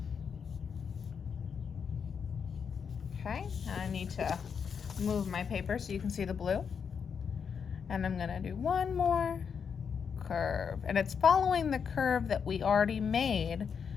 Okay, and I need to move my paper so you can see the blue. And I'm gonna do one more curve. And it's following the curve that we already made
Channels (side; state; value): right; quieter; 6.7 dB